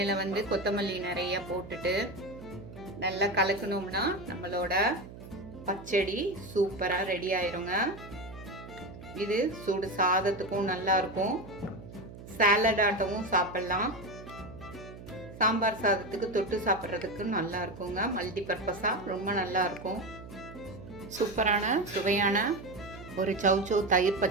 வந்து கொத்தமல்லி நிறைய போட்டுட்டு நல்லா கலக்கணும்னா நம்மளோட பச்சடி சூப்பராக ரெடி ஆயிருங்க. இது சுடு சாதத்துக்கும் நல்லா இருக்கும், சாலட் ஆட்டமும் சாப்பிடலாம், சாம்பார் சாதத்துக்கு தொட்டு சாப்பிட்றதுக்கு நல்லா இருக்குங்க. மல்டி பர்பஸாக ரொம்ப நல்லா இருக்கும். சூப்பரான சுவையான ஒரு சௌச்சவ் தயிர்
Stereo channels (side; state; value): right; noise; hum, 15 dB below the sound